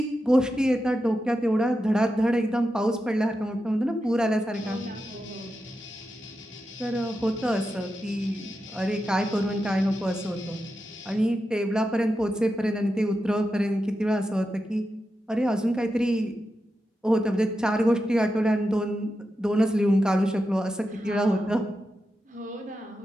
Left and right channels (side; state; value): both; normal; correlation 0.89